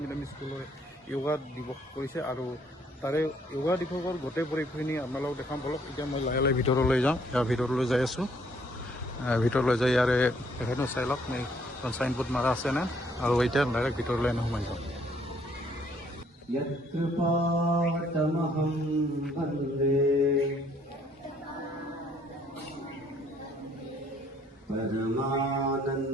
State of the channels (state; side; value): normal; both; correlation 0.65